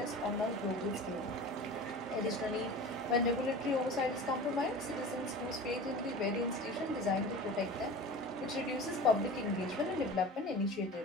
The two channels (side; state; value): both; normal; correlation 0.35